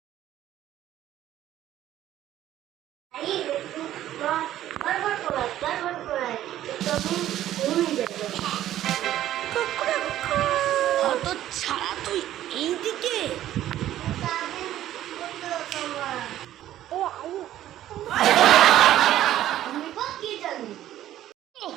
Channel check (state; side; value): quieter; left; 12.8 dB